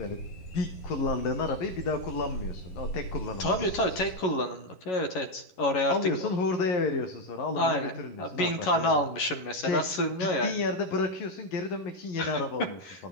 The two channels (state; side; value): late; right; 11 ms